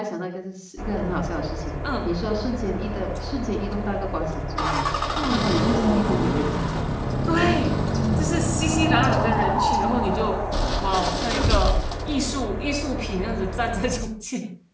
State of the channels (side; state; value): both; identical; correlation 1.00